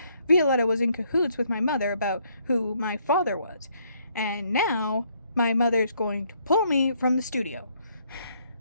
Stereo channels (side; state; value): both; inverted; correlation -0.68